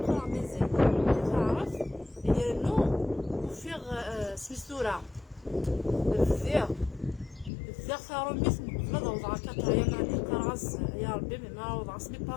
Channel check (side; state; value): right; drops out; at 7.5 s